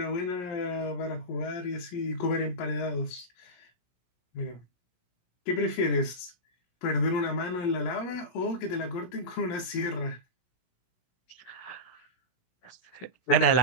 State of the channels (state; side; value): late; right; 17 ms